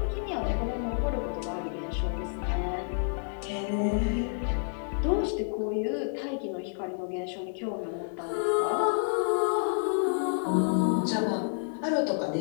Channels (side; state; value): right; silent; digital silence